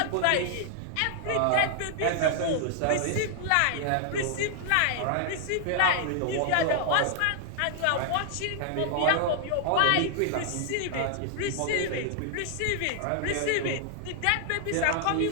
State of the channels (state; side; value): different; both; correlation 0.00